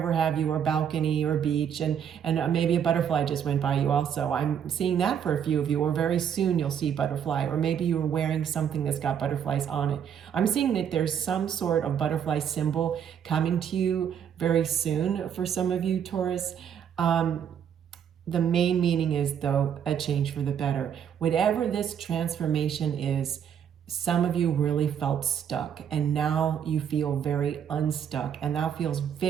have you, or balcony or beach, and maybe a butterfly just went by you also. I'm seeing that for a few of you, or very soon you'll see butterfly, or maybe you're wearing something that's got butterflies on it. I'm seeing that there's some sort of butterfly symbol coming to you very soon for some of you, Taurus. The main meaning is, though, a change for the better. Whatever this transformation is, some of you really felt stuck, and now you feel very unstuck, and that feels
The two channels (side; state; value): left; quieter; 8.5 dB